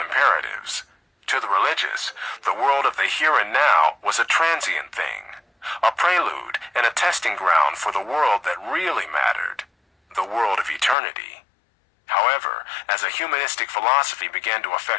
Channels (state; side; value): drops out; right; at 11.0 s